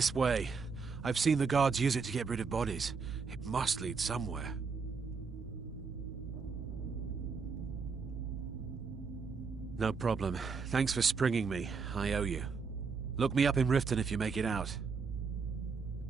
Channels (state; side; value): quieter; left; 5.1 dB